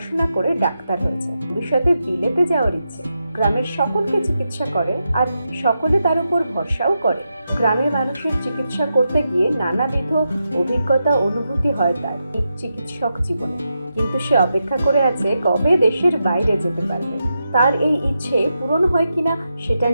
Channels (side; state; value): both; inverted; correlation -0.87